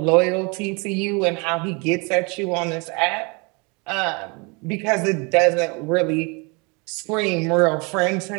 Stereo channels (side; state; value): left; quieter; 30.4 dB